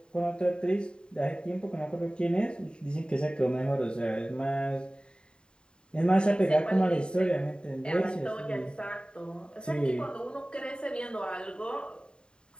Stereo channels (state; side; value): late; right; 0.049 ms